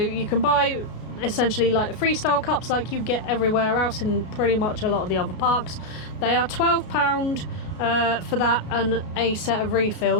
can buy essentially like the freestyle cups like you get everywhere else in pretty much a lot of the other parks. They are £12 for that and a set of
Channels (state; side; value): late; right; 33 ms